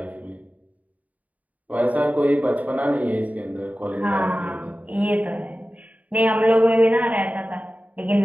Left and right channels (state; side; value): late; left; 0.072 ms